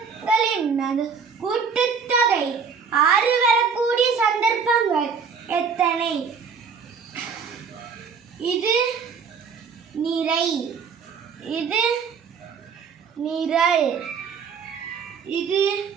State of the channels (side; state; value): left; quieter; 6.0 dB